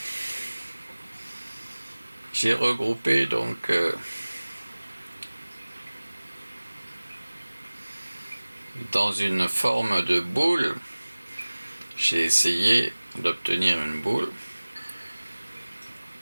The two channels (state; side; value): inverted; both; correlation -1.00